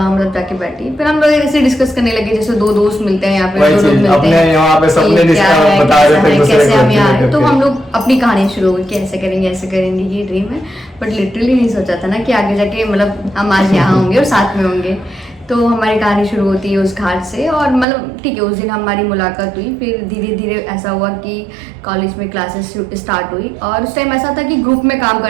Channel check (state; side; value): drops out; left; at 17.9 s